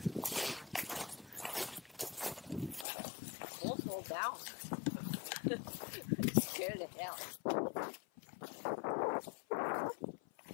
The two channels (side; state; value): right; drops out; at 2.9 s